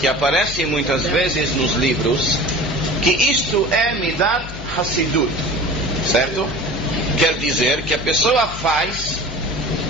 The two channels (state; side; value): noise; left; hum, 11 dB below the sound